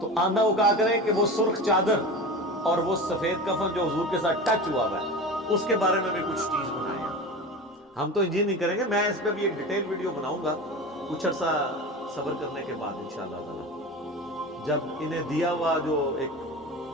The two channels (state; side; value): normal; both; correlation 0.30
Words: تو آندہ وہ کہا کرے کہ وہ سرخ چادر اور وہ سفید کفن جو حضور کے ساتھ ٹچ ہوا ہے اس کے بارے میں بھی کچھ چیز بنائے. ہم تو انجین نہیں کریں گے، میں اس پہ بھی ایک ڈیٹیل ویڈیو بناؤں گا کچھ عرصہ صبر کرنے کے بعد انشاءاللہ تعالی جب انہیں دیا ہوا جو ایک